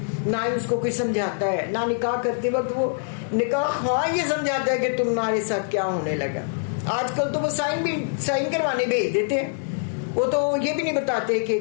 نہ ہی اس کو کوئی سمجھاتا ہے, نہ نکاح کرتے وقت وہ نکاح ہاں یہ سمجھاتا ہے کہ تمہارے ساتھ کیا ہونے لگا. آج کل تو وہ سائن کروانے بھیج دیتے ہیں, وہ تو یہ بھی نہیں بتاتے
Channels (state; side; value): silent; right; 62 dB below the other